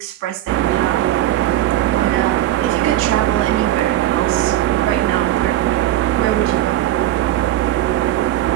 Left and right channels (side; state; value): left; quieter; 13.5 dB